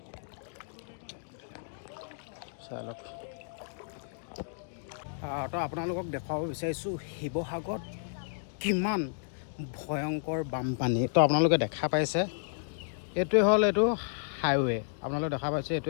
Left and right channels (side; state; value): right; silent; digital silence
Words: চাই লওক। তো আপোনালোকক দেখুৱাব বিচাৰিছোঁ শিৱসাগৰত কিমান ভয়ংকৰ বানপানী। তো আপোনালোকে দেখা পাইছে এইটোৱে হ'ল এইটো হাইৱে, আপোনালোকে দেখা পাইছে